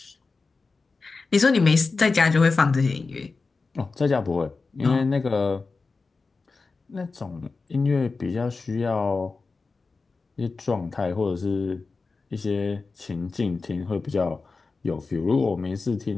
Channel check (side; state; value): right; quieter; 4.1 dB